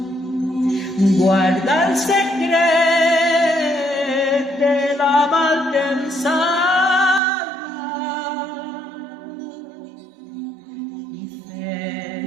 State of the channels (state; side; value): drops out; left; at 7.2 s